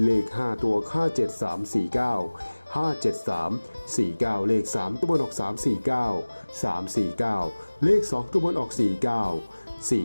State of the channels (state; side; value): inverted; both; correlation -1.00